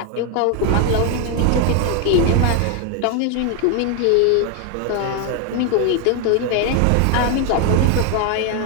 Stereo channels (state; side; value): different; both; correlation 0.01